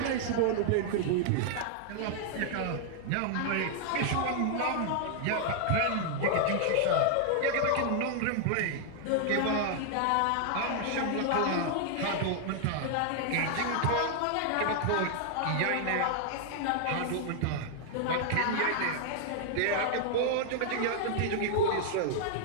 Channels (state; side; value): different; both; correlation 0.00